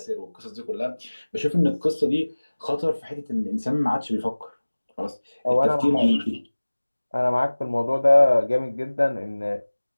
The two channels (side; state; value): both; inverted; correlation -1.00